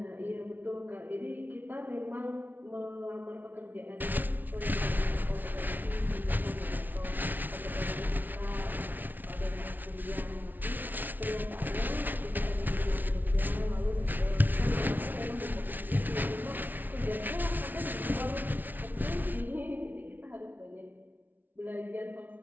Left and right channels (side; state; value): left; late; 0.084 ms